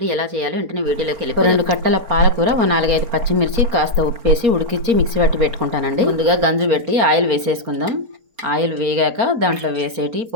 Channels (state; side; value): late; left; 4.3 ms